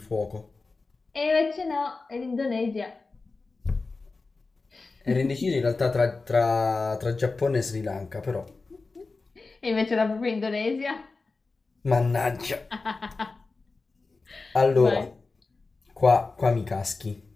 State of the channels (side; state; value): right; quieter; 3.8 dB